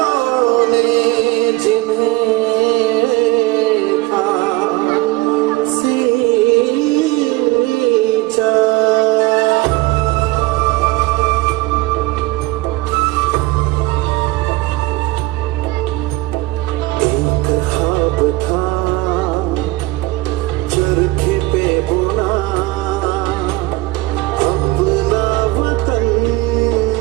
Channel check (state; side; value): quieter; left; 19.6 dB